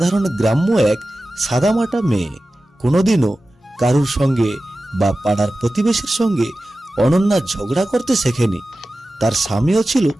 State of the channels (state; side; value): normal; both; correlation 0.95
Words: গ্রাম্য এক সাদামাটা মেয়ে। কোনোদিনও কারুর সঙ্গে বা পাড়ার প্রতিবেশীর সঙ্গে অনন্যা ঝগড়া করতে শেখেনি। তার স্বামীও ছিল